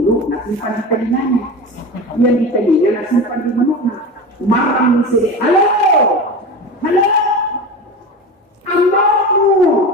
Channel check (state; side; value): normal; both; correlation 0.28